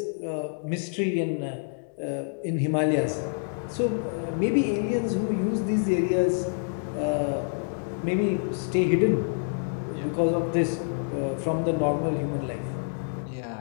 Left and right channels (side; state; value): right; silent; digital silence